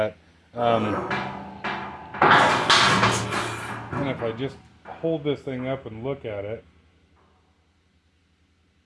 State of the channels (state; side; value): identical; both; correlation 1.00